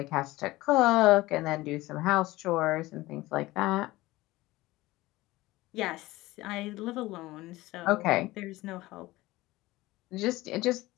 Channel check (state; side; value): quieter; right; 18.8 dB